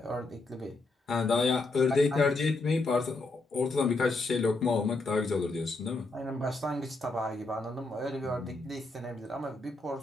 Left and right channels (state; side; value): quieter; right; 3.2 dB